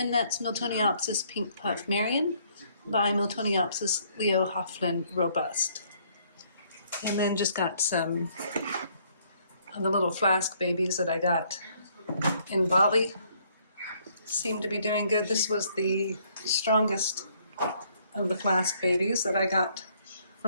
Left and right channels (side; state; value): both; inverted; correlation -0.66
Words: that's Miltoniopsis Pink Puff Marion by Miltoniopsis Leo Hauflin Robust. And then just got some of the little flask babies that I got in Bali seem to be doing good. This was the strongest of the flask babies that I got